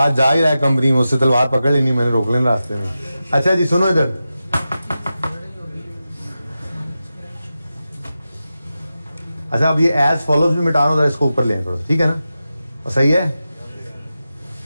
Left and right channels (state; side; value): inverted; both; correlation -0.92